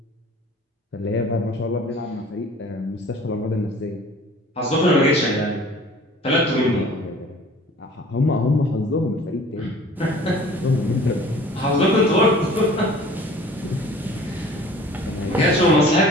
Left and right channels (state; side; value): normal; both; correlation 0.47